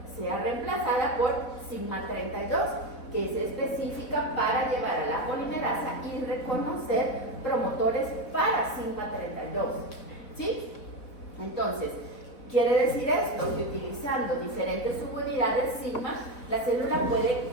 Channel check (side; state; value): right; late; 4.0 ms